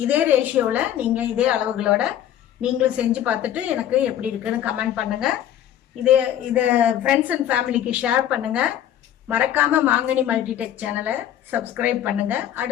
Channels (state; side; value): quieter; right; 11.1 dB